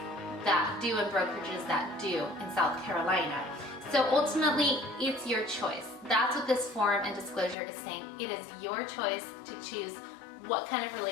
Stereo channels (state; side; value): drops out; right; at 7.6 s